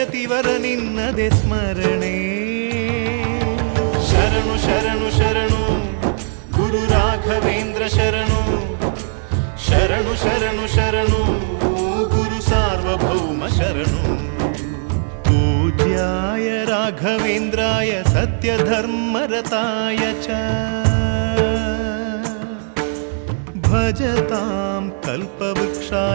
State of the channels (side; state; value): left; silent; 66 dB below the other